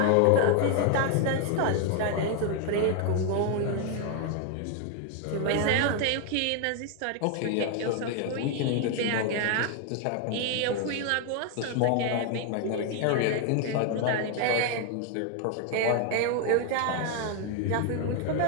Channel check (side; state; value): both; different; correlation 0.00